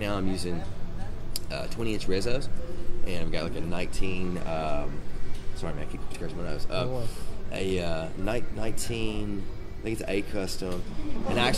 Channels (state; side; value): identical; both; correlation 1.00